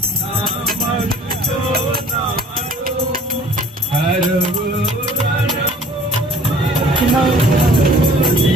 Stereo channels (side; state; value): both; normal; correlation 0.53